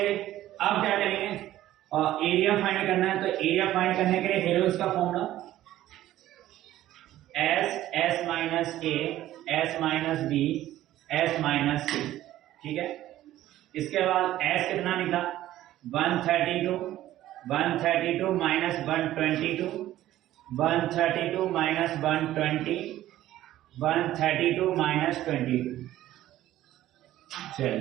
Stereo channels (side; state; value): left; quieter; 14.0 dB